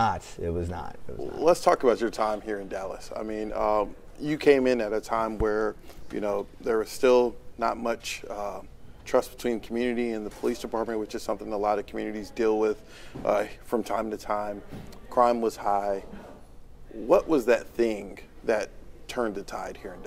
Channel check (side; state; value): both; identical; correlation 1.00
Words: It was not. Let's talk about your time here in Dallas. I mean, you came in at a time where, there was still not much trust between community and the police department, which is something a lot of communities deal with from time to time. Crime was high. What was that thing that turned the tide here in